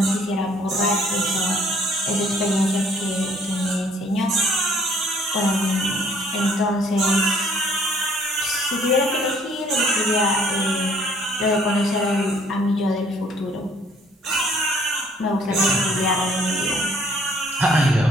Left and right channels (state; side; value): normal; both; correlation 0.60